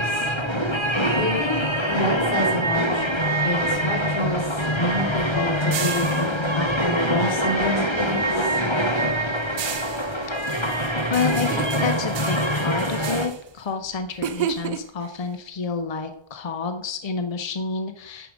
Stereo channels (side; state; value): right; late; 1.3 ms